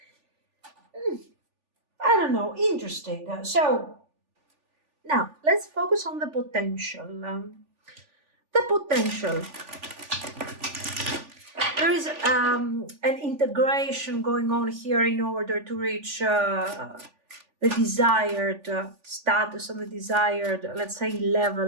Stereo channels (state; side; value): late; left; 3.4 ms